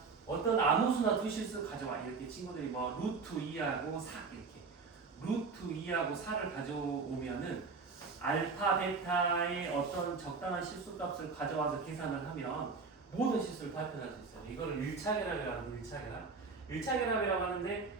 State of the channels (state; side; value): quieter; left; 4.7 dB